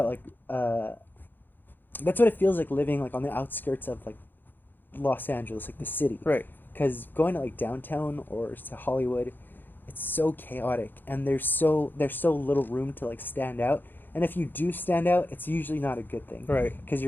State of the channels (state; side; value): late; right; 0.092 ms